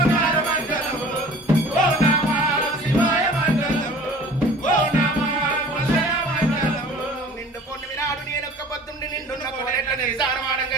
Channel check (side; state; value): both; normal; correlation 0.46